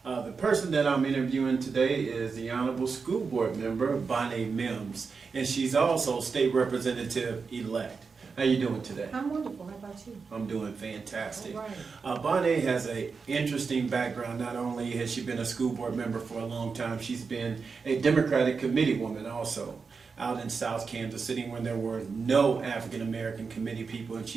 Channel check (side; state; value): left; quieter; 5.1 dB